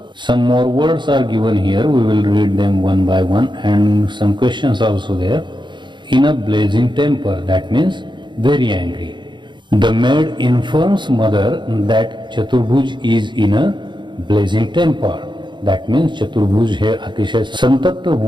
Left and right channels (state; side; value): late; left; 0.23 ms